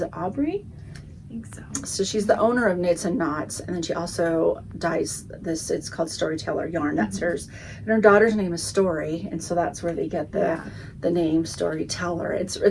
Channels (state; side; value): identical; both; correlation 1.00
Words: it Aubrey? I think so. So she's the owner of Knits and Knots, and then she also dyes this, it's called Storyteller yarn, that's hers. And her daughter's name is Story, and so that's where they get the name Storyteller.